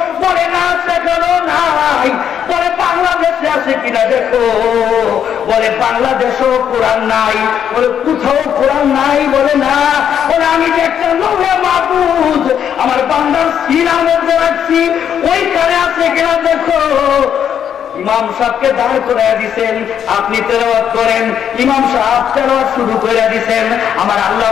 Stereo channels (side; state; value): right; quieter; 8.8 dB